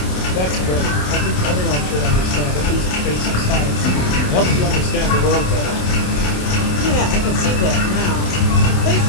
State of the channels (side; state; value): right; late; 27 ms